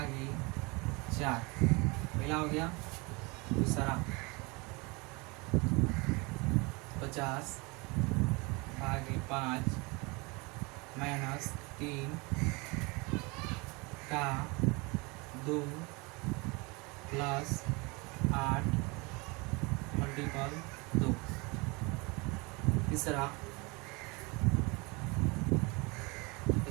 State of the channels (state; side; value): quieter; left; 27.3 dB